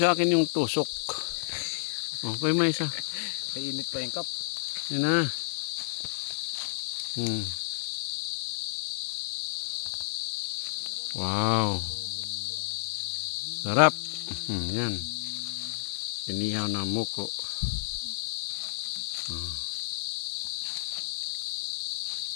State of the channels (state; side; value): silent; right; 57 dB below the other